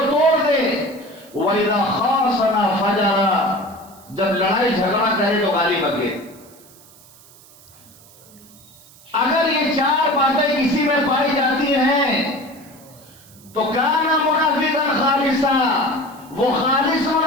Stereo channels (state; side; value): noise; right; hiss, 24 dB below the sound